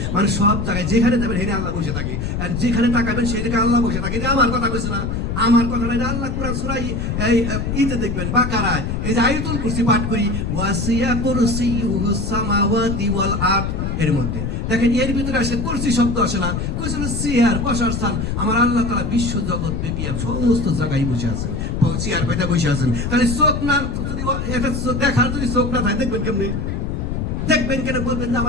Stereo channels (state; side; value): noise; left; rumble, 2 dB below the sound